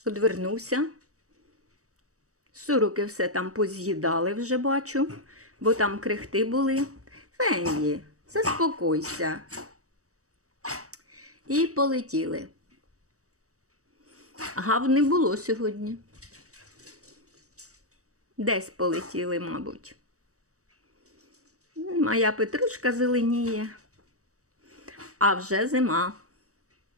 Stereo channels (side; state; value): left; late; 0.65 ms